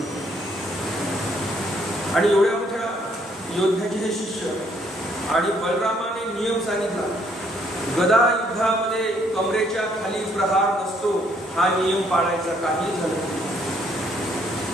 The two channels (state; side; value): normal; both; correlation 0.67